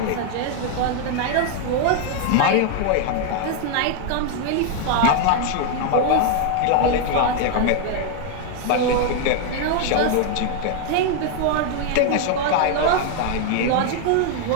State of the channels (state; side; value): different; both; correlation 0.01